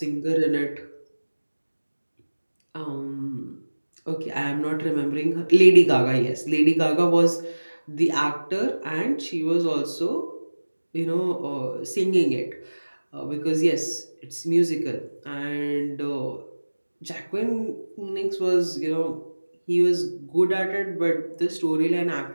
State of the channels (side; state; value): both; inverted; correlation -1.00